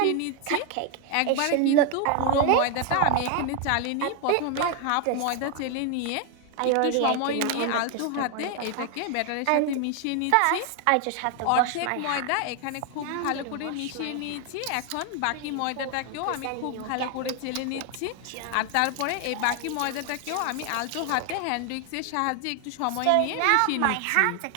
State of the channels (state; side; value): different; both; correlation 0.00